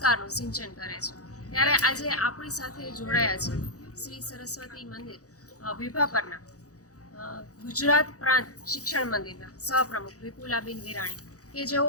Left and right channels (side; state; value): right; late; 0.66 ms